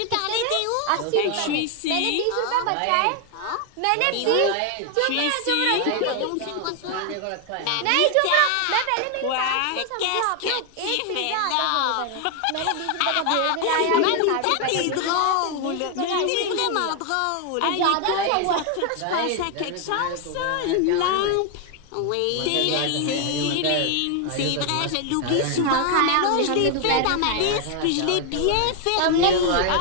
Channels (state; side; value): different; both; correlation 0.00